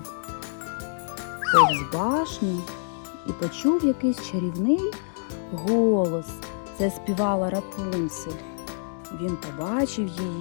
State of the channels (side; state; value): right; silent; digital silence